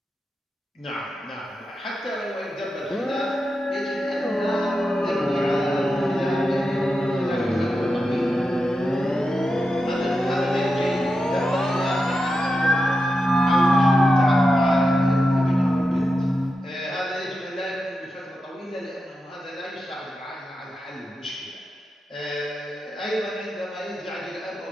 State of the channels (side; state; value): both; normal; correlation 0.89